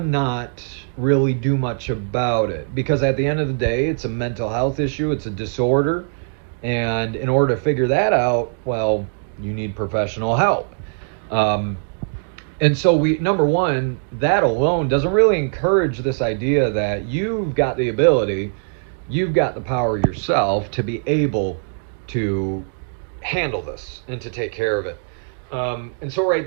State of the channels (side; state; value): left; silent; digital silence